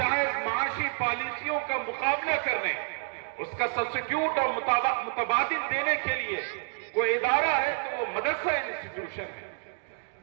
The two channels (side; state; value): left; silent; 59 dB below the other